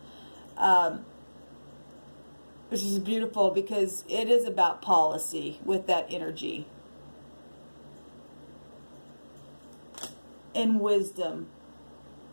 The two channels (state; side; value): inverted; both; correlation -1.00